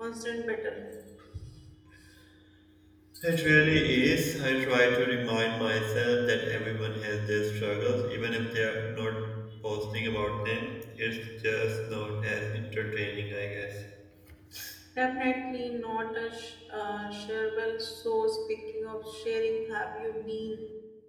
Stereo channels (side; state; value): both; identical; correlation 1.00